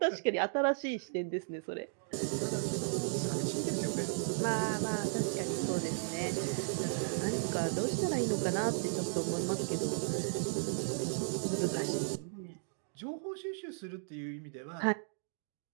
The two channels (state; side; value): silent; left; digital silence